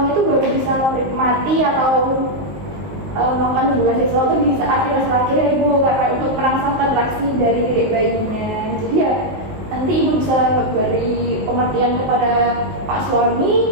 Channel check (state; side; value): late; left; 19 ms